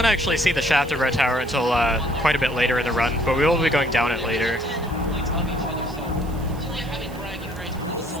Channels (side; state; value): right; noise; hiss, 22 dB below the sound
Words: actually see the shaft of Red Tower until quite a bit later in the run, but we will be going down it later.